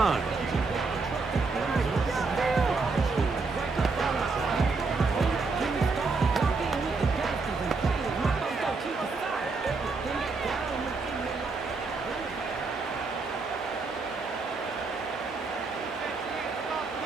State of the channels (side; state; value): left; quieter; 4.2 dB